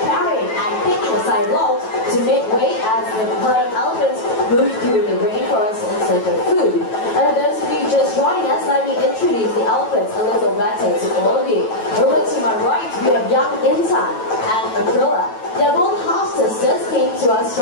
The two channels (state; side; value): late; right; 9.1 ms